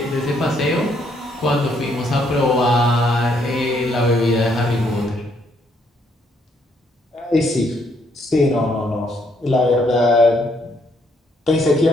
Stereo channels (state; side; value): normal; both; correlation 0.71